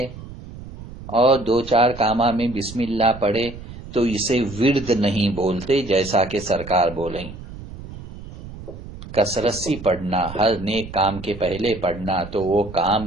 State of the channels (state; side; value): noise; right; rumble, 14 dB below the sound